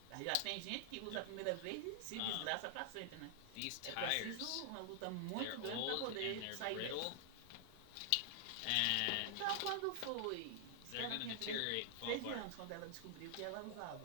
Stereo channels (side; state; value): both; different; correlation 0.00